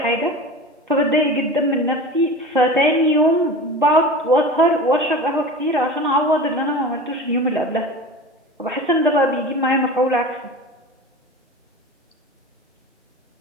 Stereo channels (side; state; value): both; normal; correlation 0.33